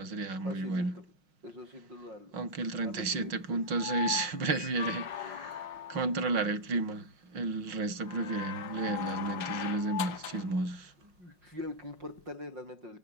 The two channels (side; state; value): left; late; 5.6 ms